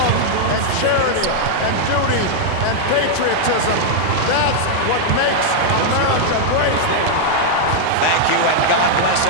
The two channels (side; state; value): both; different; correlation -0.01